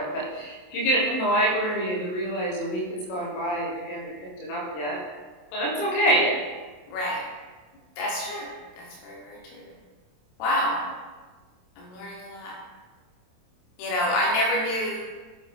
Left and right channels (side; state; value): right; late; 27 ms